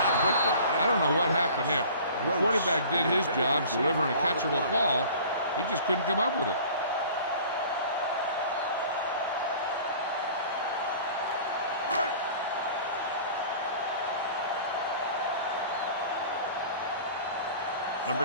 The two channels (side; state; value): both; inverted; correlation -0.45